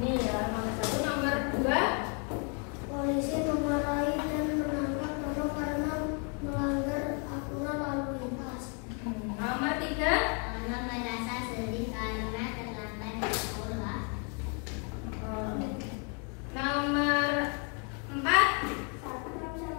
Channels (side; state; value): right; quieter; 37.8 dB